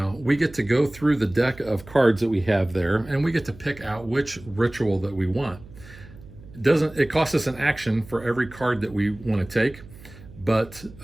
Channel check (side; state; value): right; noise; hum, 19 dB below the sound